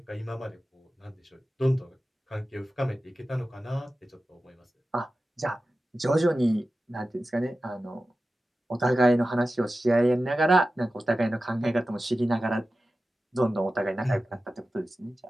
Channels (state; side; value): normal; both; correlation 0.94